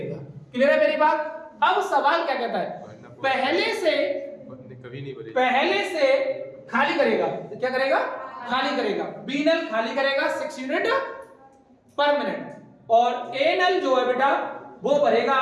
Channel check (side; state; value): both; identical; correlation 1.00